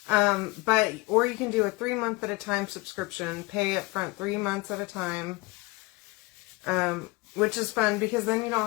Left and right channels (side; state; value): right; quieter; 23.4 dB